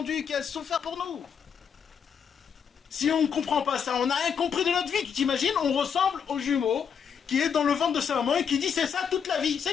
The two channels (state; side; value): quieter; right; 7.2 dB